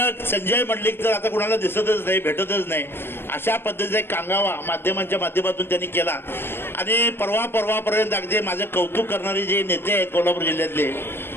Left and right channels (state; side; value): late; right; 0.11 ms